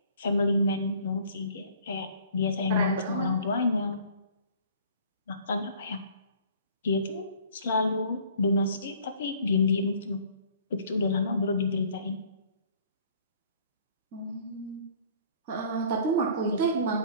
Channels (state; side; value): inverted; both; correlation -0.53